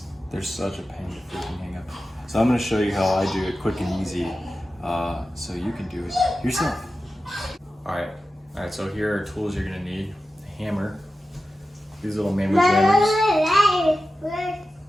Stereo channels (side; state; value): both; normal; correlation 0.93